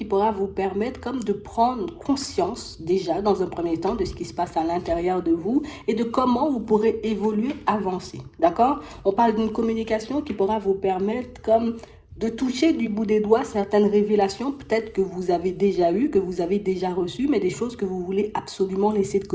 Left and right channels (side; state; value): both; identical; correlation 1.00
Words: pourra vous permettre comme de prendre conscience déjà dans un premier temps de ce qui se passe à l'intérieur de vous et de comment vous pourrez évoluer, avancer. D'accord? On parle d'une communication qui pourra vous permettre comme de toucher du bout des doigts certaines révélations, peut-être que vous avez déjà eues, que vous avez déjà reçues, mais des choses que vous voulez absolument laisser de